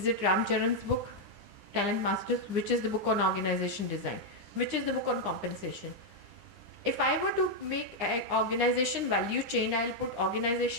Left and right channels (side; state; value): left; late; 9.8 ms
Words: it Ram Charan's book, Talent Masters? Which is the book on organization design? Which is the book on compensation? If I were to make an organization value chain, I'll put